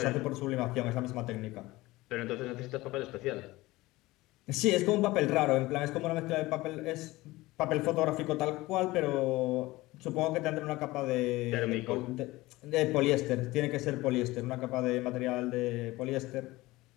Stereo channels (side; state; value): right; quieter; 19.5 dB